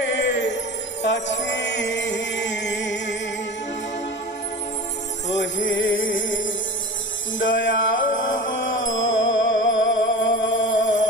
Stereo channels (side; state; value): both; normal; correlation 0.33